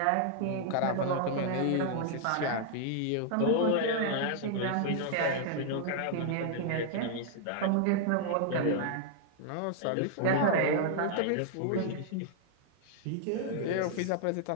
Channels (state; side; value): different; both; correlation 0.00